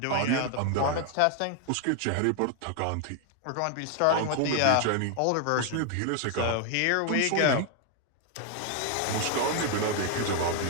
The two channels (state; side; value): different; both; correlation 0.00